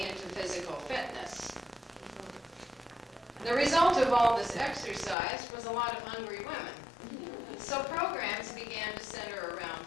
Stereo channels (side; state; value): right; drops out; at 5.2 s